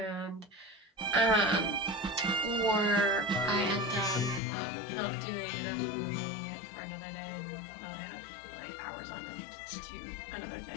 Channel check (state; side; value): drops out; right; at 4.4 s